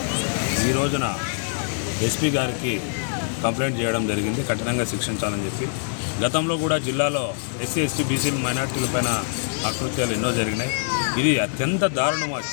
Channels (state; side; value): silent; right; 63 dB below the other